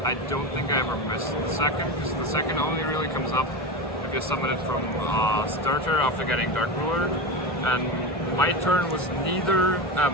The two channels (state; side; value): normal; both; correlation 0.21